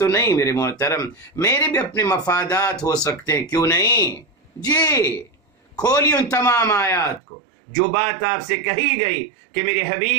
نہیں میرے محترم، میرے بھی اپنے مفادات ہو سکتے ہیں، کیوں نہیں. جی کھولی ان تمام آیات کو. جو بات آپ سے کہی گئی کہ میرے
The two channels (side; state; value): left; drops out; at 7.2 s